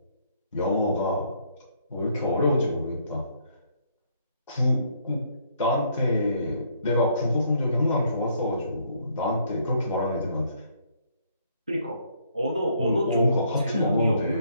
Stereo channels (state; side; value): inverted; both; correlation -0.68